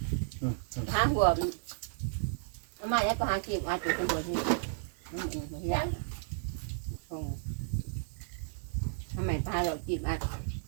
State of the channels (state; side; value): silent; left; digital silence